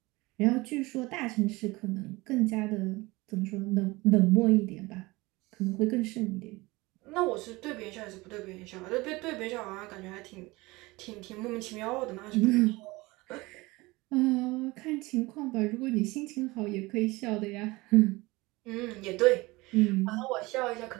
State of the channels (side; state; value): left; quieter; 22.1 dB